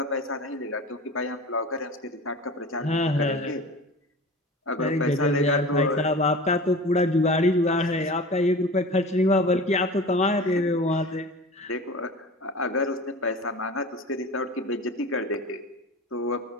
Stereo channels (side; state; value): both; normal; correlation 0.36